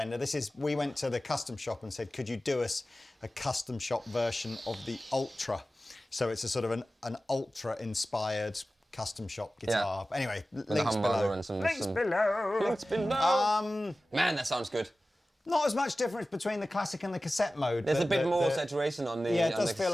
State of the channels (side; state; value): both; normal; correlation 0.96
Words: We went to the custom shop and said, could you do us a custom shop version of the Ultra? So it's a sort of an Ultra-inspired custom shop guitar. Yeah. Anyway, links below. Links below. Man, that sounds good. Not as much difference between the classic and the cassette mode. There's a bit more saturation on the Yeah, it does feel